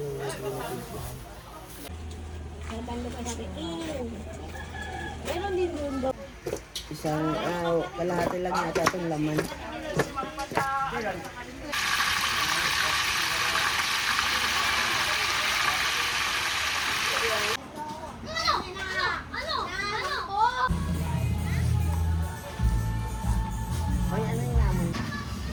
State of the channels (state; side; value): identical; both; correlation 1.00